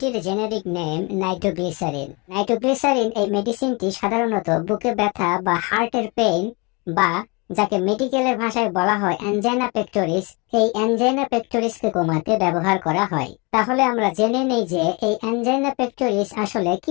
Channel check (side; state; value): right; quieter; 29.0 dB